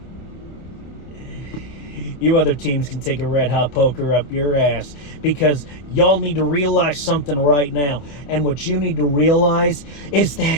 can take a red hot poker up your ass. Because y'all need to realize something right now. And what you need to realize is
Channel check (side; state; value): right; late; 27 ms